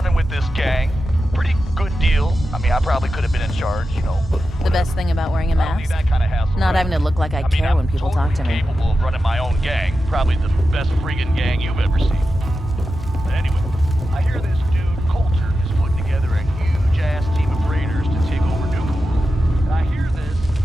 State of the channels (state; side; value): normal; both; correlation 0.91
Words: with this gang. Pretty good deal. I mean, I probably could have been in charge, you know. The best thing about wearing a mask? That kind of hassle, Not right? having to look like I care when people talk to me. Capable of running my own gang. Probably the best friggin' gang you've ever seen. But anyway, I hear this dude, Coulter, is putting together a huge-ass team of raiders to take over Nuka World. And I hear this,